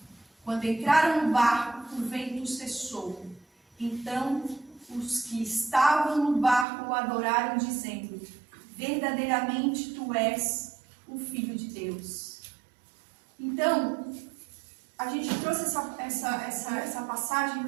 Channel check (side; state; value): left; drops out; at 6.7 s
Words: Quando entraram no barco, o vento cessou. Então os que estavam no barco o adoraram, dizendo: "Verdadeiramente tu és o Filho de Deus." Então, a gente trouxe essa passagem